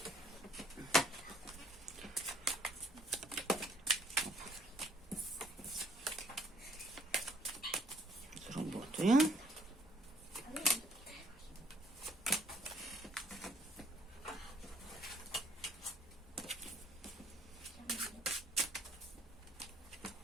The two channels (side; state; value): both; normal; correlation 0.64